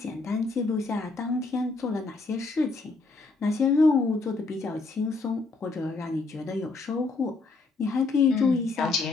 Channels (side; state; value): right; quieter; 3.7 dB